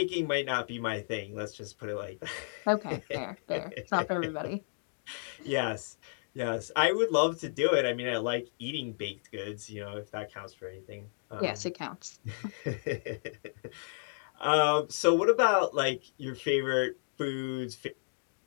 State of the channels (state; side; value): silent; right; digital silence